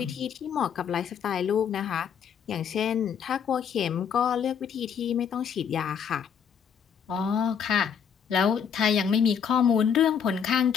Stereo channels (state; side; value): quieter; right; 7.5 dB